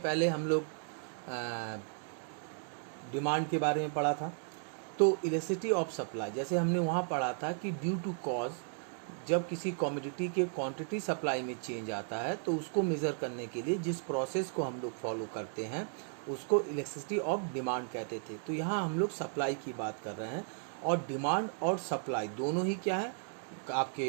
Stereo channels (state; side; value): silent; left; 55 dB below the other